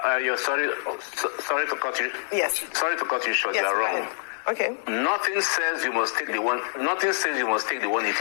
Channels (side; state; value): right; silent; 57 dB below the other